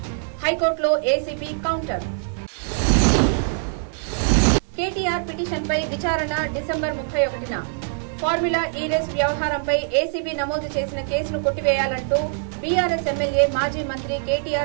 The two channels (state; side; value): silent; left; digital silence